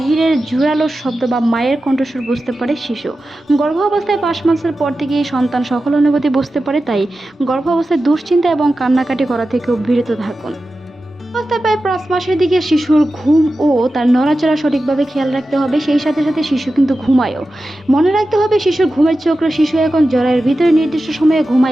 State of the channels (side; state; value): both; normal; correlation 0.93